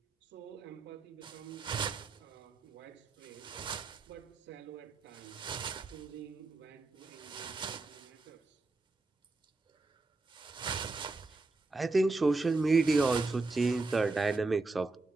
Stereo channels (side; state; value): left; quieter; 3.4 dB